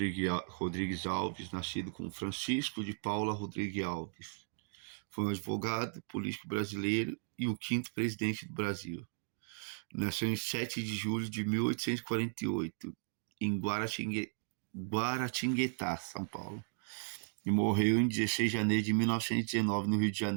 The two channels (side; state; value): left; silent; digital silence